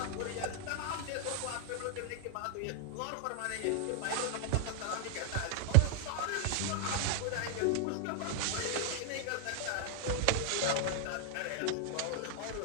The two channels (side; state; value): both; different; correlation 0.00